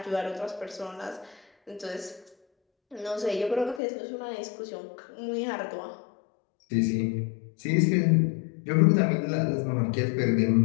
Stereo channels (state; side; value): drops out; right; at 3.8 s